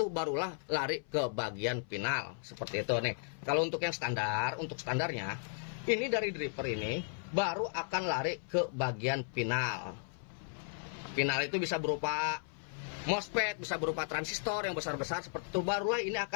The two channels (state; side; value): silent; right; 54 dB below the other